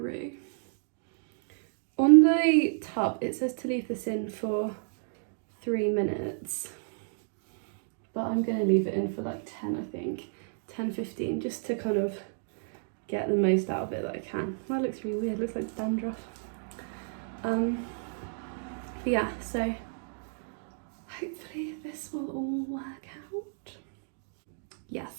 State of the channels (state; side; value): silent; left; digital silence